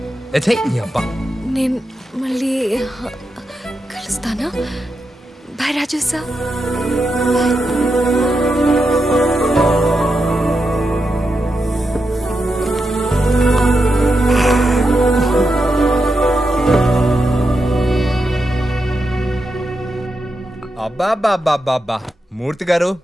నేను మళ్ళీ కలుస్తానా? బాయ్ రాజు సార్. అబ్బా మూర్తి గారు,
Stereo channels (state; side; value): normal; both; correlation 0.87